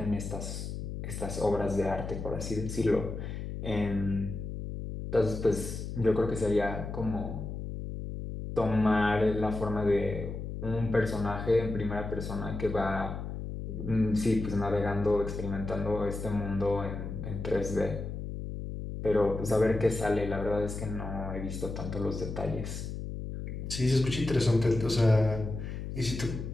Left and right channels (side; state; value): left; noise; hum, 6 dB below the sound